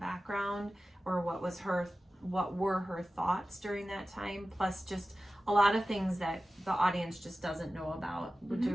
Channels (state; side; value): normal; both; correlation 0.95